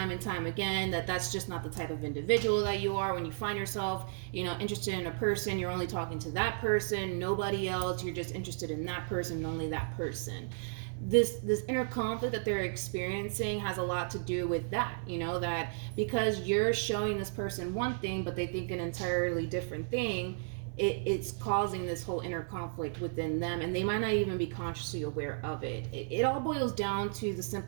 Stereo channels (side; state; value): left; silent; 55 dB below the other